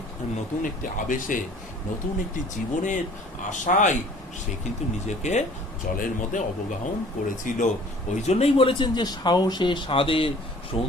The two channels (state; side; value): normal; both; correlation 0.51